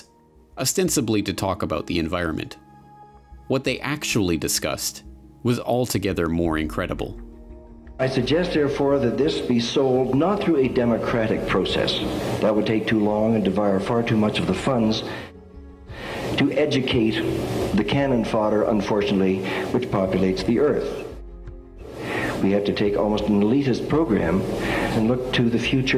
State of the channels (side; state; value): both; identical; correlation 1.00